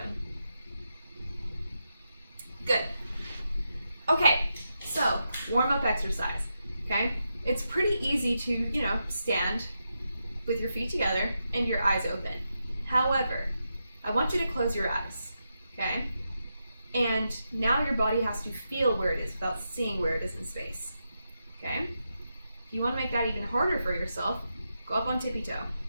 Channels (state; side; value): inverted; both; correlation -0.86